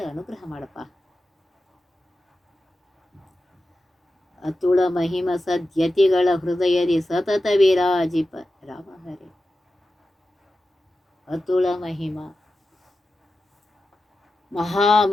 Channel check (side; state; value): both; normal; correlation 0.92